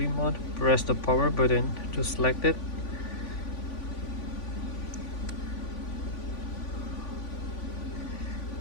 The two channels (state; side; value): late; right; 3.5 ms